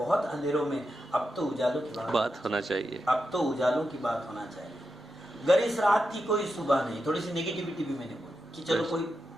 अंधेरों में, अब तो उजालों की बात होना चाहिए। अब तो उजालों की बात होना चाहिए। अगर इस रात की कोई सुबह नहीं, थोड़ी सी नेगेटिविटी भी मैंने बोली कि चलो कोई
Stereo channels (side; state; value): both; normal; correlation 0.88